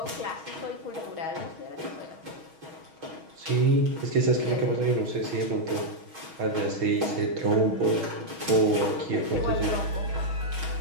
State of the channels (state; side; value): late; left; 6.3 ms